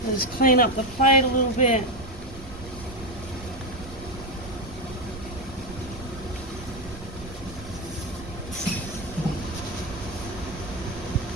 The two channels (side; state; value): right; noise; rumble, 15 dB below the sound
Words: Just clean up the plate a little bit.